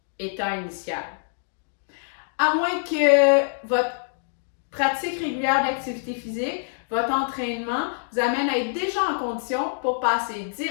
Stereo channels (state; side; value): silent; right; digital silence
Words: état initial. À moins que votre pratique régulière d'activité physique, votre entraînement vous amène à être déjà en condition pour passer